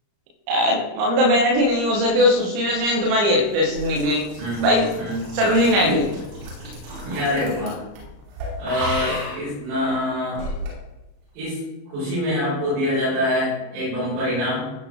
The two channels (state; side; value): late; left; 34 ms